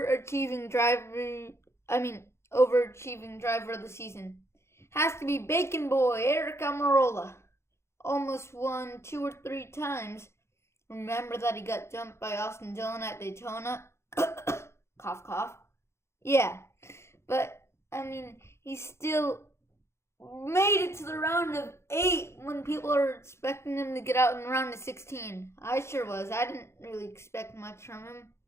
driver of the season has to be Bacon Boy, Aric Almirola. Almost won 2 or 3 times. Remember that he got jumped by Austin Dillon at Daytona? Cough, cough. Yeah, but, he still made it to the round of 8 when people are expecting him to get out in the round of 16. I sure was. I didn't really expect much from him.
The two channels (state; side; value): late; right; 0.13 ms